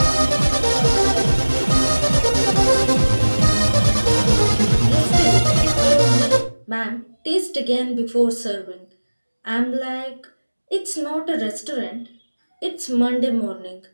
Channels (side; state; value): both; inverted; correlation -1.00